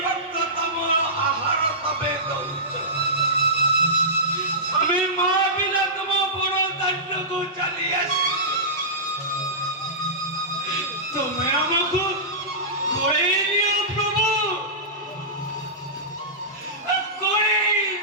ଭକ୍ତ ତମ ଆହାର ତମେ ଦଉଛ। ଆମେ ମା ବିନା ତମ ବଡ଼ ଦାଣ୍ଡକୁ ଚାଲି ଆସିଛୁ। ତୁମେ ଆମକୁ ଗୋଳେଇ ନିଅ ପ୍ରଭୁ, ଗୋଳେଇ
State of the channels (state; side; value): normal; both; correlation -0.18